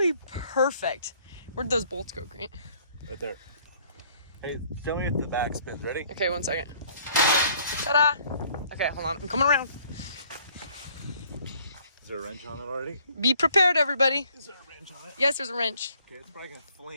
perfect. Where'd those bolts go, Grant? Right there. Hey, show me if the back spins. Ready? Okay, 1 second. Ta-da! Okay, hold on. I'm coming around. Is there a wrench on it already? Be prepared, everybody. Is there a wrench on it? Yes, there's a wrench. Okay, it's probably gonna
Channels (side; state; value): both; inverted; correlation -0.60